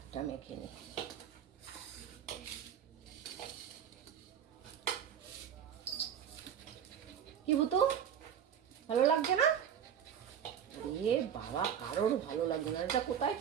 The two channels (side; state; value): left; quieter; 8.8 dB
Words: মেখে নিই। কি বুতু ভালো লাগছে না? এ বাবা, কারোর ভালো লাগছে না। এটা কোথায়